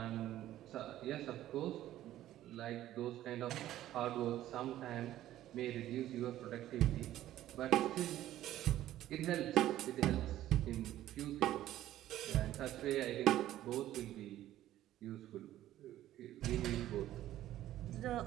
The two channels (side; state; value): left; quieter; 13.5 dB